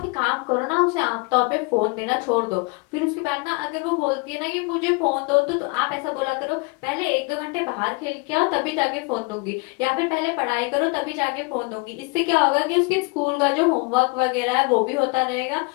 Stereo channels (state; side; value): quieter; right; 28.9 dB